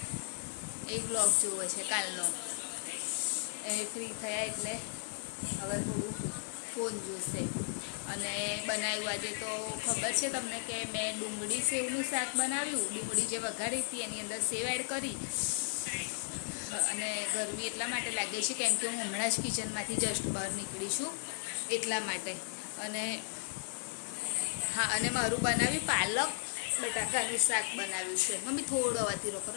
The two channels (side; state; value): right; silent; digital silence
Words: એ બ્લોગ જોવે છે કાલનો. એ ફ્રી થયા એટલે હવે થોડું ફોન જોશે. અને બનાવ્યું આજે તો ખબર છે તમને કે મેં ડુંગળી સેવનું શાક બનાવ્યું. ડુંગળી જે વઘારી હતી એની અંદર સેવ એડ કરી. અને ગરમી એટલા માટે લાગે છે કેમ કે હું હમણાં જ કિચનમાંથી જસ્ટ બહાર નીકળી છું એટલા માટે. અને હા, અને મારું બનાવ્યું પાલક બટાકાનું શાક બનાવ્યું છે. મમ્મી થોડો અવાજ ધીરો